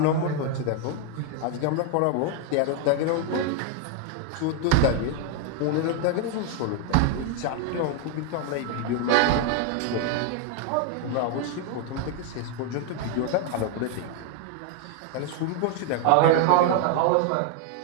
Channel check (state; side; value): different; both; correlation 0.00